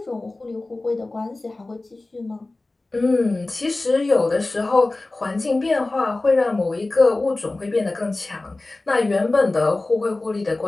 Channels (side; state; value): right; quieter; 3.1 dB